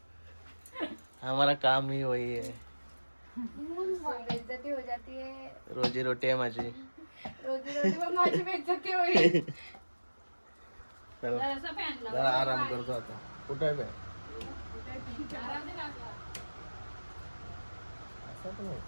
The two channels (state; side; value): inverted; both; correlation -1.00